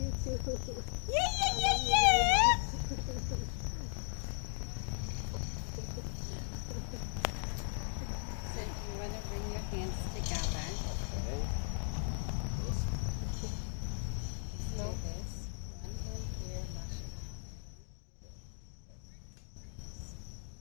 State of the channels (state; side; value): silent; right; 53 dB below the other